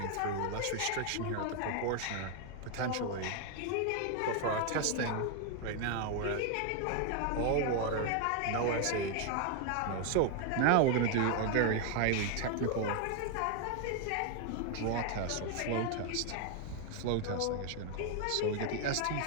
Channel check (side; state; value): both; different; correlation 0.00